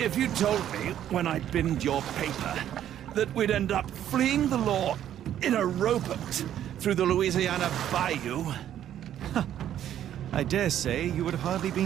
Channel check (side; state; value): left; quieter; 11.0 dB